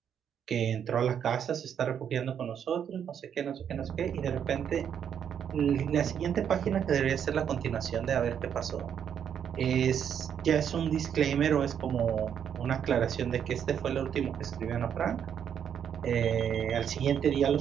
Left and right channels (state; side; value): quieter; left; 8.4 dB